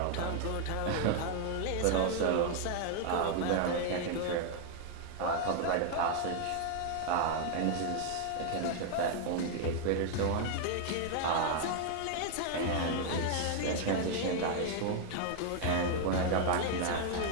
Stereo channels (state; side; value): different; both; correlation 0.00